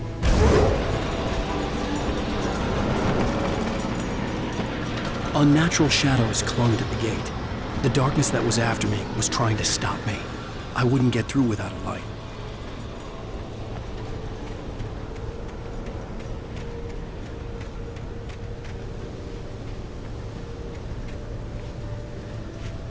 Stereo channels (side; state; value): both; identical; correlation 1.00